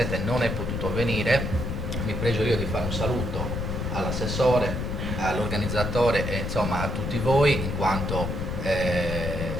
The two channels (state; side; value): noise; left; rumble, 3 dB below the sound